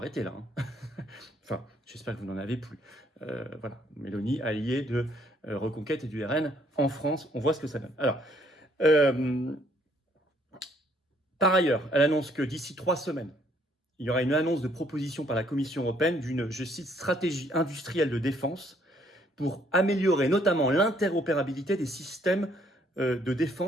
là. Enfin, j'espère que vous n'en avez plus. Voilà, Meloni, allié de Reconquête et du RN en France, on voit ce que ça donne. Alors, par ailleurs, elle annonce que d'ici 3 semaines, il y aura une annonce de proposition par la Commission européenne d'une, je cite, stratégie industrielle de défense pour améliorer notamment l'interopérabilité des systèmes de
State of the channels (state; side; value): normal; both; correlation 0.66